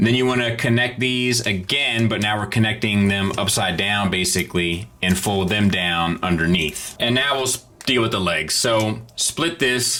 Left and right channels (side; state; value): both; identical; correlation 1.00